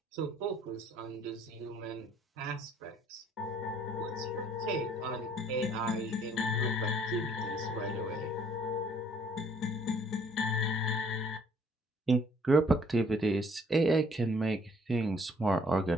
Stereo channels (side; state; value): both; normal; correlation 0.61